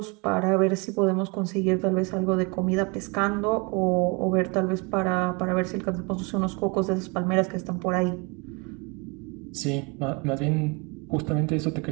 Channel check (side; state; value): left; quieter; 30.6 dB